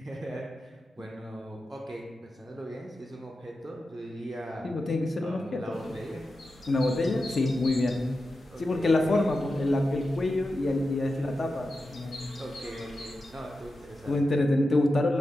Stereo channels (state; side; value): normal; both; correlation 0.91